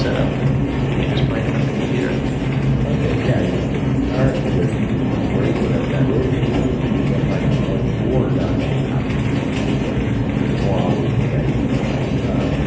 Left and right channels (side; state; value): both; identical; correlation 1.00